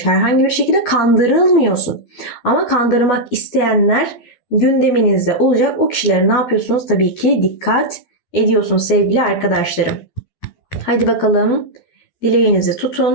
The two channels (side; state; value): right; late; 12 ms